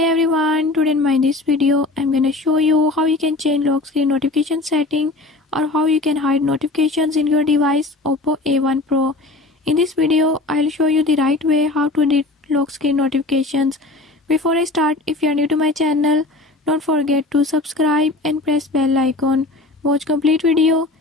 everyone, today in this video I'm gonna show you how you can change lock screen notification setting or how you can hide notifications in your device Oppo A1 Pro. In this video I'll show you the right way how to delete lock screen notifications. Before I start, if you are new to my channel, don't forget to subscribe and press bell icon. Watch complete video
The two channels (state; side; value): quieter; right; 3.1 dB